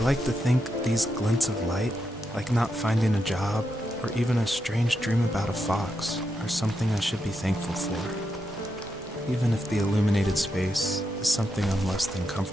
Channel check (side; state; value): both; normal; correlation 0.84